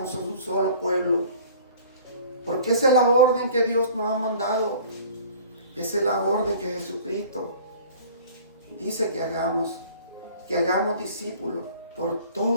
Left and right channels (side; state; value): both; inverted; correlation -0.47